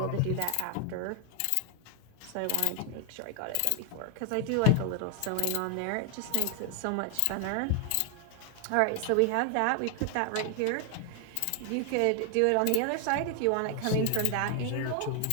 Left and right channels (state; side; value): different; both; correlation 0.00